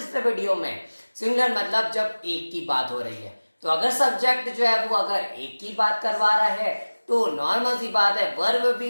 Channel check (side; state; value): both; inverted; correlation -1.00